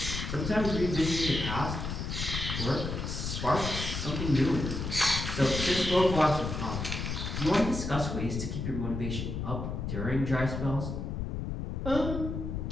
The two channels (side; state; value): left; noise; rumble, 4 dB below the sound